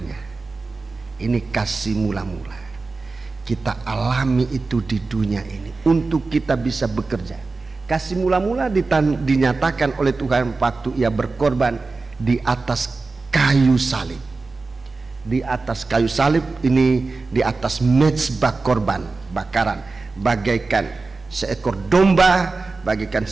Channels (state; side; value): quieter; left; 3.9 dB